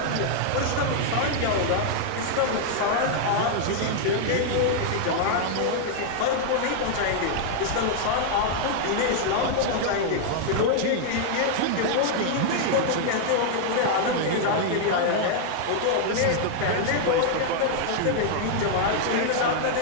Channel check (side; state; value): both; different; correlation -0.01